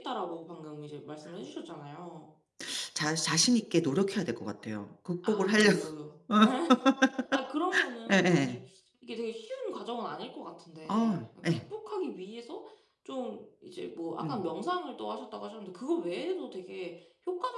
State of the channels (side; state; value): both; identical; correlation 1.00